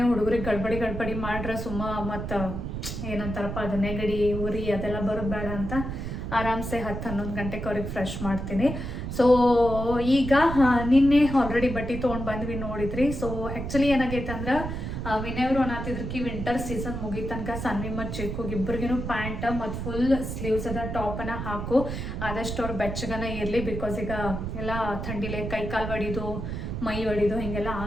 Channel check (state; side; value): noise; right; rumble, 5 dB below the sound